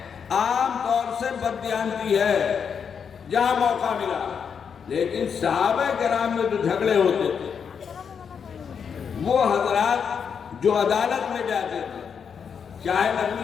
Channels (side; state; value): right; quieter; 6.8 dB